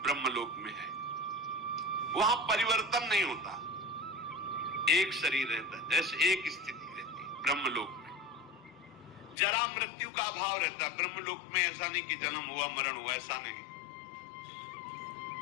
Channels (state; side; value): drops out; right; at 9.3 s